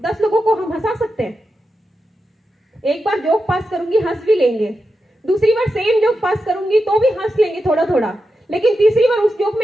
लोगों को हम हंसा सकते हैं। एक बार जोक पास करूंगी हंस भी लेंगे, दूसरी बार सेम जोक पास करूंगी तो भी हंस लेंगे थोड़ा थोड़ा, लेकिन तीसरी बार उस जोक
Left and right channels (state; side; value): normal; both; correlation 0.89